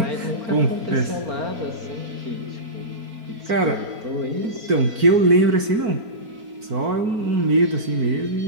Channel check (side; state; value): left; late; 4.5 ms